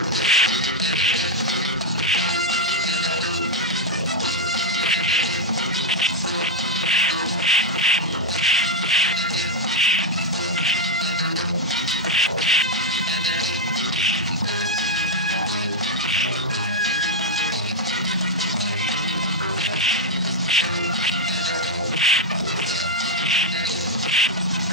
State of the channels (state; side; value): normal; both; correlation 0.00